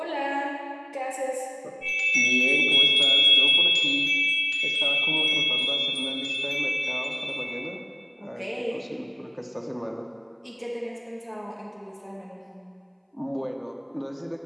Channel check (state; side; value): identical; both; correlation 1.00